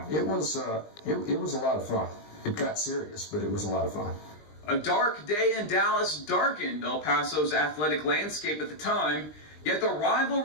It was a lot of fun. It got serious, but it was a lot of fun. A dark day in Dallas darkened El Paso's athletic landscape at the time, yet the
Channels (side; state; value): right; late; 20 ms